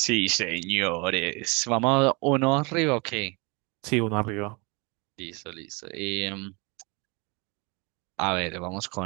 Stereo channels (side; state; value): left; quieter; 29.1 dB